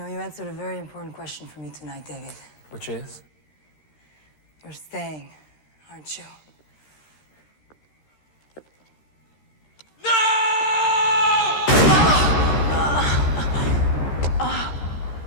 you answered a very important question for me tonight, David. Which is? You're staying, aren't you?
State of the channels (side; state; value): right; late; 13 ms